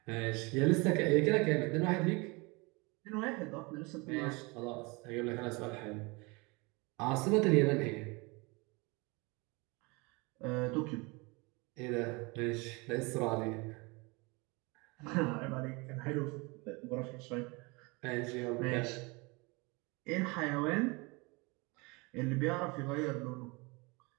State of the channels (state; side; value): quieter; left; 27.0 dB